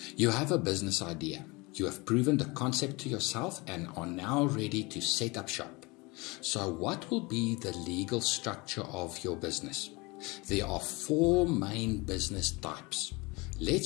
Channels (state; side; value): quieter; right; 25.3 dB